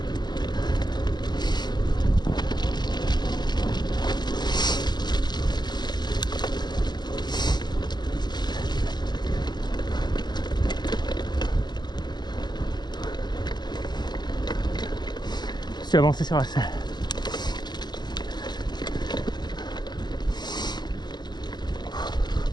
Je suis avancé sur la selle.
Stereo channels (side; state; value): right; late; 0.21 ms